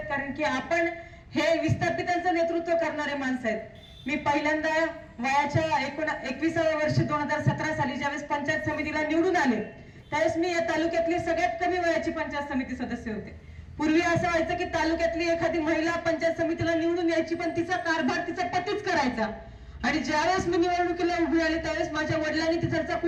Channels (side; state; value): both; identical; correlation 1.00